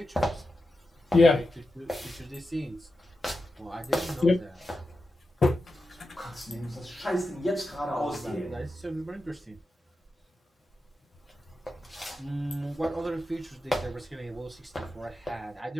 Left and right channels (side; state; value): both; normal; correlation 0.90